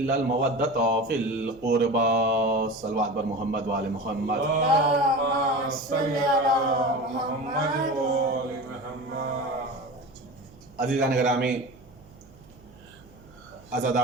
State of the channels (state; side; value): noise; right; hum, 24 dB below the sound